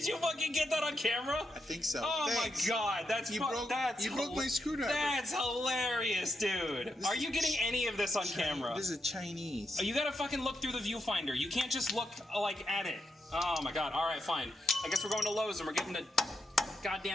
you fucking get that on camera? I think so. Oh Thanks. my god, You broke my screwdriver. That's hilarious, dude. Are you getting any of this on camera? This is Chinese. Oh, you gotta fucking look through the viewfinder. You can't just look like at it. Oh my god. All right, fine. I guess we're going to Lowe's and we're getting a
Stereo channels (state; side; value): normal; both; correlation 0.83